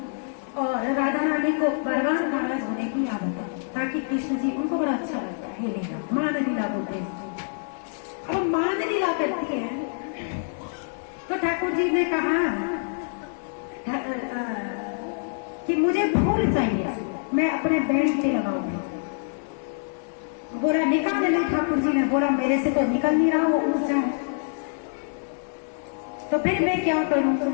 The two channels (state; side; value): silent; right; digital silence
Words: और राधा रानी को बरबार नाराज होने की आदत है, ताकि कृष्ण जी, उनको बड़ा अच्छा लगता है ये लीला, मान लीला बोलते हैं। अब मान लीला करती है तो ठाकुर जी ने कहा कि मुझे फूल चाहिए, मैं अपने बैंड पे लगाऊंगी। बोला निकाल ले, ठाकुर जी ने बोला मेरे से तो निकल नहीं रहा, वो ऊंचा है, तो फिर मैं क्या करूं।